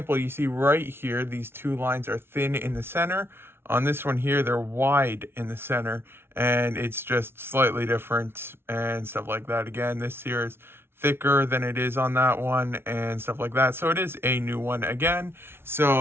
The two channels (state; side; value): late; left; 0.12 ms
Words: you see right here, these 2 lines are thin in the center. On this one here, they're wide in the center, and it's just slightly different and stuff like that. Again, this here is thicker than it is on that one and stuff like that. So it is a new one again.